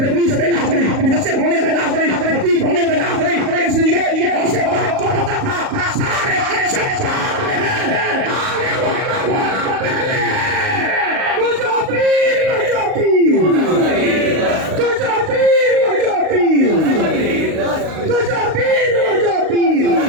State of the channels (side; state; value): left; late; 38 ms